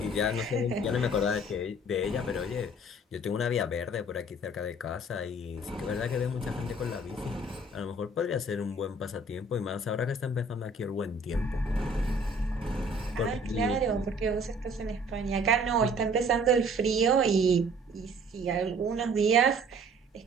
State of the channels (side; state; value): both; normal; correlation 0.54